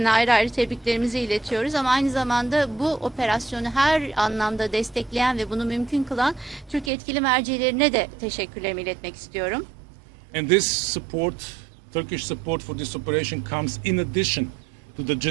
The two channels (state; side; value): drops out; left; at 6.9 s